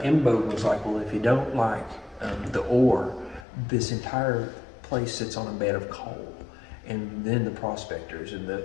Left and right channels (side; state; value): right; drops out; at 3.5 s